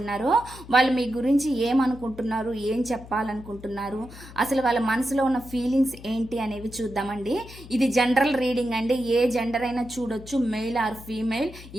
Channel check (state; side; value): noise; left; hum, 17 dB below the sound